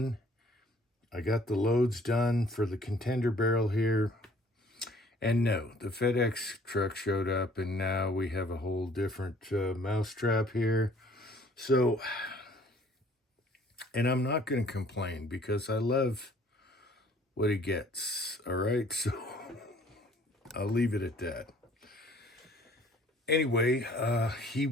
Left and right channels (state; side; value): normal; both; correlation 0.57